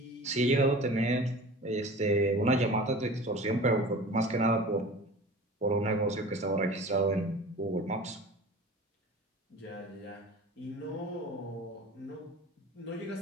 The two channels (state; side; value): normal; both; correlation 0.39